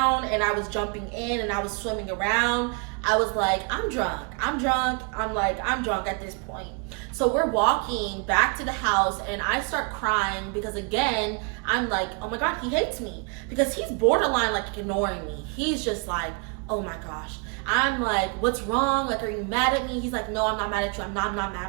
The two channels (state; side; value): quieter; left; 35.3 dB